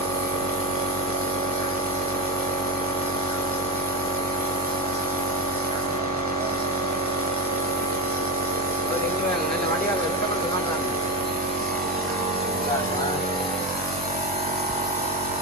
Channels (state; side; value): normal; both; correlation 0.17